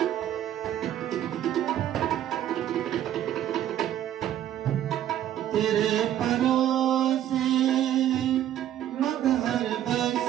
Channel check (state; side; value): quieter; left; 11.5 dB